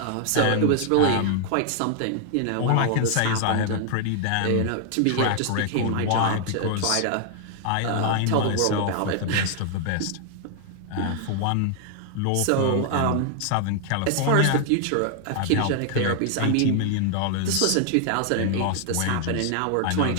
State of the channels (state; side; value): different; both; correlation 0.00